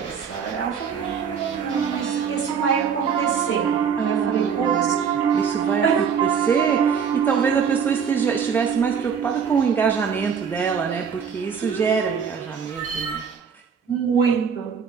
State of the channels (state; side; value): quieter; left; 6.9 dB